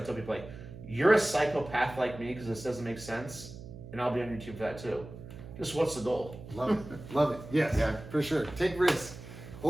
tell people, like, you're a psychopath like me because this doesn't make sense, and I'll be on your team for that too. Just what's the goal? Love it. Love it. Yes, Yeah. for sure. Take risks.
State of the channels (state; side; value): noise; right; hum, 14 dB below the sound